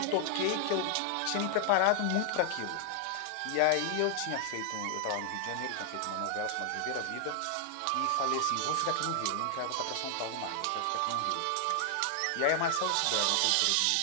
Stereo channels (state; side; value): different; both; correlation 0.00